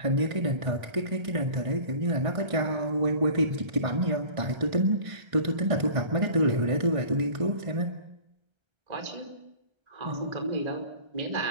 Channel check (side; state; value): left; late; 1.5 ms